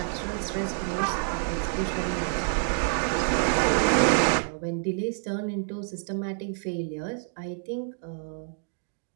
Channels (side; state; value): left; silent; 59 dB below the other